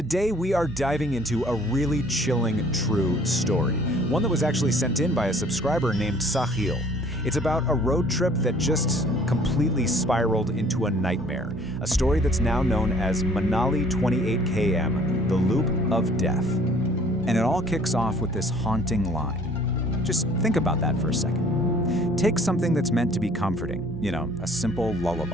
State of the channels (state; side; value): normal; both; correlation 0.55